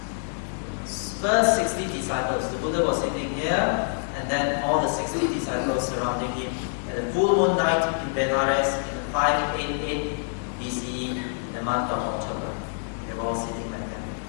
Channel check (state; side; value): silent; right; 58 dB below the other